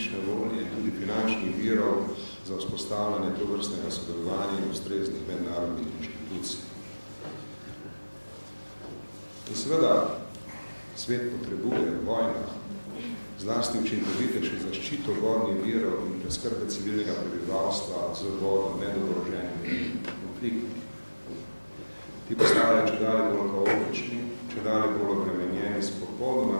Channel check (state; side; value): inverted; both; correlation -1.00